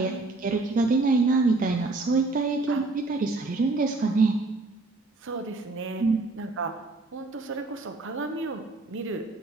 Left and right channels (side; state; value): left; quieter; 3.3 dB